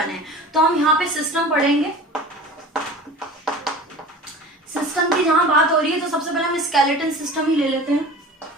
हैं। तो हम यहाँ पे सिस्टम पढ़ेंगे। सिस्टम की जहां बात हो रही है तो सबसे पहले हम स्केलेटन सिस्टम ही ले लेते हैं।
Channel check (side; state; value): both; normal; correlation 0.38